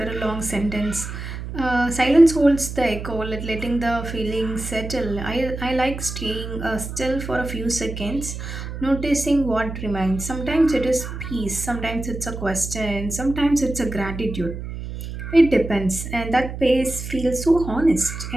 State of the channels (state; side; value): noise; right; hum, 8 dB below the sound